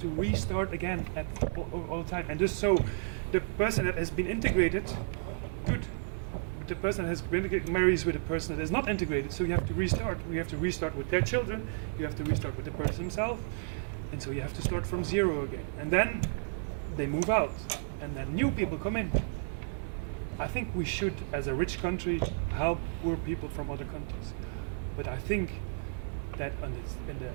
restart again all the time, and just so the person that has been integrated, good. But the person that has been integrated marries with a person that is not integrated, so you have to restart. We have to restart with their children. You have to restart with the person himself, and so you have to start from zero again. And then they move out, and then new people come in. I think we should, as a rich country, help poor people from other countries. But I think that in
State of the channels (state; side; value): silent; left; 56 dB below the other